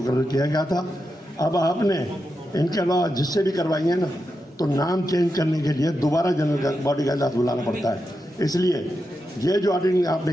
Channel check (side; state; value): both; normal; correlation 0.87